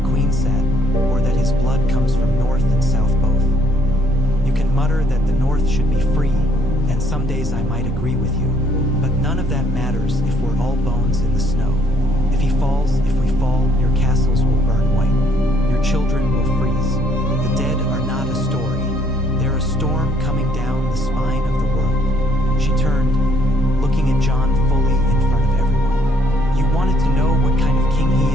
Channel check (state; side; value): normal; both; correlation 0.66